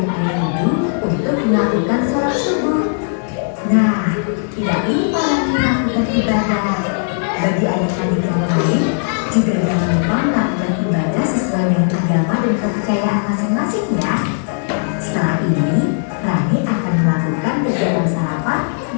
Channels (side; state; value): right; silent; 68 dB below the other